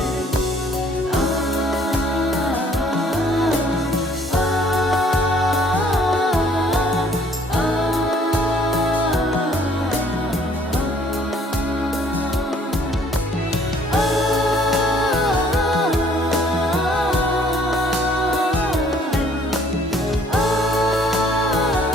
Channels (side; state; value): both; normal; correlation 0.60